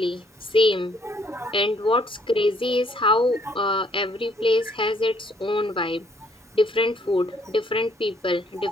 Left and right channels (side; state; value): both; normal; correlation 0.66